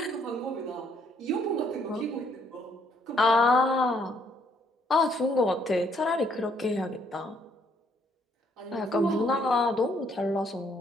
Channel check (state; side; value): normal; both; correlation 0.69